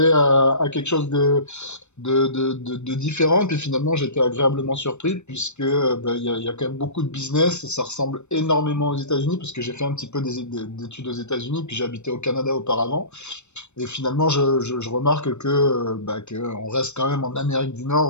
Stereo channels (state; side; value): late; right; 0.82 ms